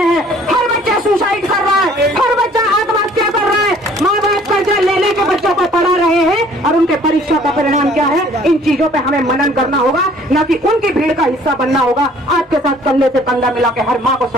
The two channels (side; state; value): both; normal; correlation 0.56